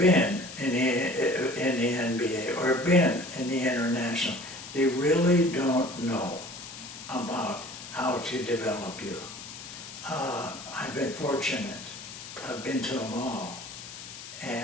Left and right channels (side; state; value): left; noise; hiss, 13 dB below the sound